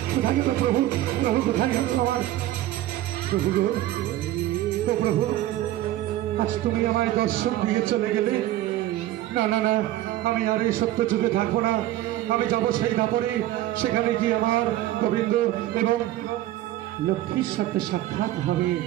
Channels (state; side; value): quieter; left; 14.5 dB